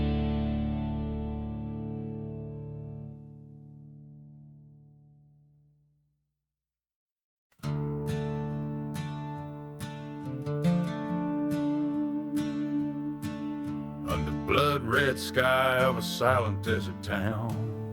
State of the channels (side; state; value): both; identical; correlation 1.00